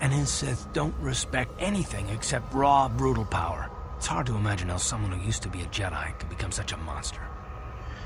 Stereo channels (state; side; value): identical; both; correlation 1.00